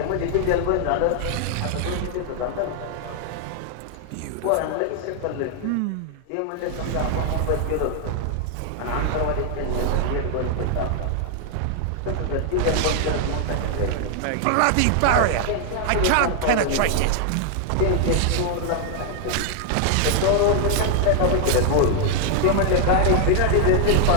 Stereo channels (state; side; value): different; both; correlation 0.00